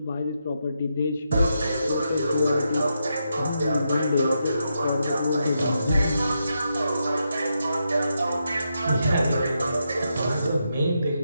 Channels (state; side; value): inverted; both; correlation -0.83